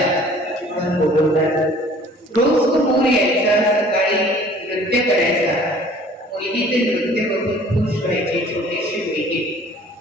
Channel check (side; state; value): both; normal; correlation 0.51